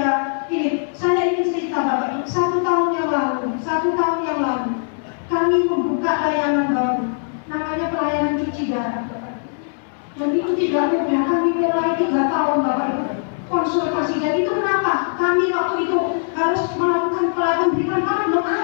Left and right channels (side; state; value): right; silent; 65 dB below the other